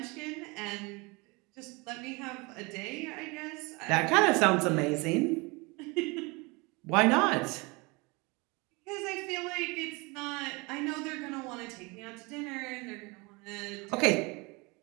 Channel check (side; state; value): left; quieter; 26.8 dB